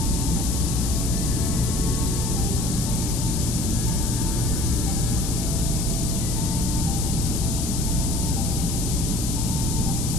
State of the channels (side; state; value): left; noise; hiss, 5 dB below the sound